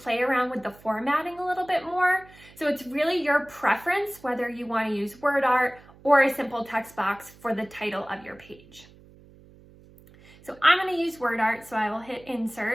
around with the formatting a little bit more. So it's really your preference whether you want to use word art or a simple text box for the title of your page. So I'm going to use word art, so I will hit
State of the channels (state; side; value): noise; right; hum, 24 dB below the sound